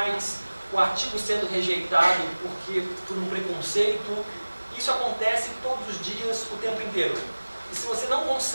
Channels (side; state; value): both; inverted; correlation -1.00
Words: o artigo sendo rejeitado por um preconceito. Isso acontece todos os dias, o tempo inteiro. E se você não